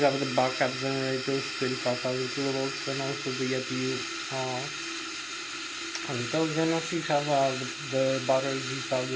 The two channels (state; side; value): identical; both; correlation 1.00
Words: have the backup generators 35,000 kilovolts, and also the APU and those, and also you have the batteries. You have